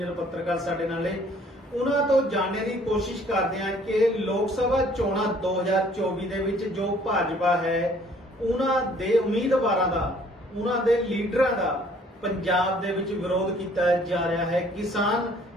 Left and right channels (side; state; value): both; normal; correlation 0.58